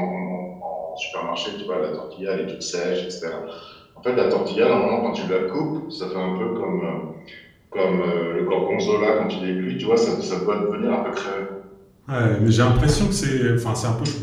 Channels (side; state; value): both; identical; correlation 1.00